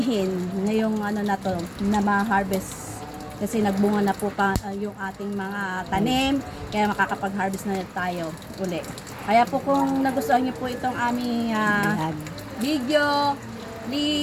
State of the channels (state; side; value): identical; both; correlation 1.00